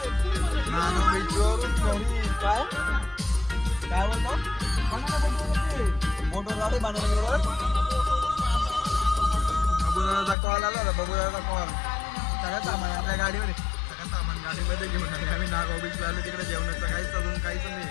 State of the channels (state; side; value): drops out; right; at 10.4 s